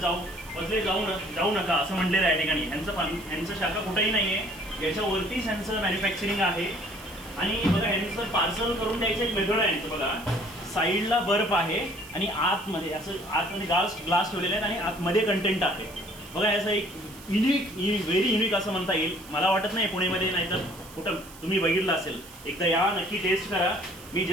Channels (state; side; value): noise; right; hiss, 19 dB below the sound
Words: जाऊ नका असं म्हटलेलं आहे या ठिकाणी. यांचं शाखा कुठेही नाही आहे. याच्यावरतीच यांचं मॅन्युफॅक्चरिंग आहे. आणि बघा यांचं पार्सल करून द्यायचं एक मेथड आहे यांचं. बघा साईडला बर्फ आहे आणि आतमध्ये आतमध्ये ग्लास ठेवलेले आहेत आणि आतमध्ये कंटेंट आहे. बघा याचं एक व्हेरी युनिक असं म्हणता येईल. मला वाटत नाही पुणेमध्ये नाही तर कुठं तुम्ही बघितलं असेल. एकदा या नक्की टेस्ट करा. मी